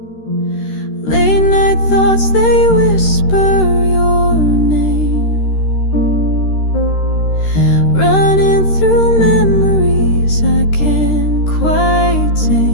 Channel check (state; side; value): late; right; 13 ms